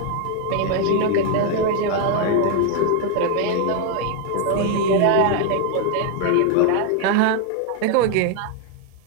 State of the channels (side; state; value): both; different; correlation 0.01